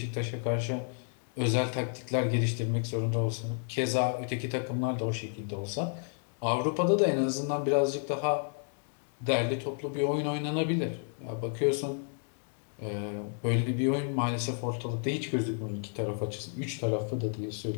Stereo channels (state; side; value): silent; right; 57 dB below the other